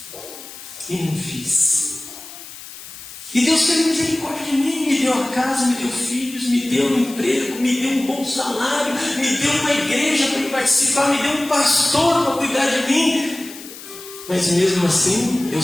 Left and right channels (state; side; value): noise; left; hiss, 15 dB below the sound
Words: e não fiz. E Deus teve misericórdia de mim, me deu a casa, me deu filhos, me deu um emprego, me deu um bom salário, me deu uma igreja para participar, me deu um pastor para cuidar de mim. Mas mesmo assim, eu